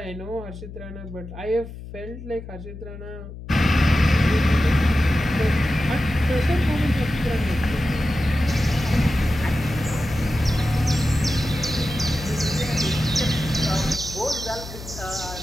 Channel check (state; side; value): noise; left; hum, 13 dB below the sound